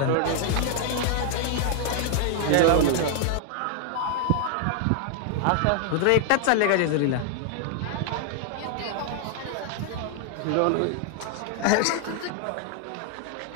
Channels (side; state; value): both; different; correlation 0.00